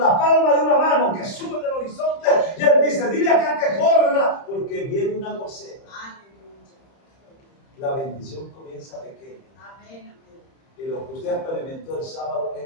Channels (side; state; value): right; late; 30 ms